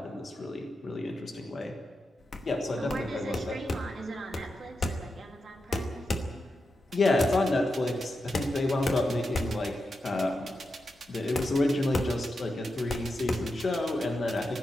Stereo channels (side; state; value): both; normal; correlation 0.88